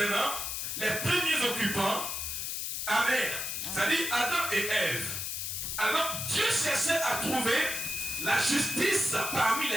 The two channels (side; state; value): left; noise; hiss, 3 dB below the sound